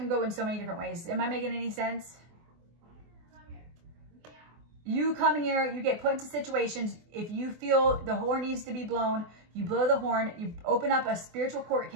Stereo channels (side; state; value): left; late; 24 ms